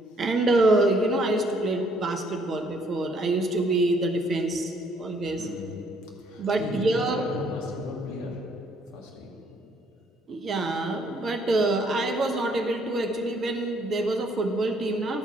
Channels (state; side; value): normal; both; correlation 0.66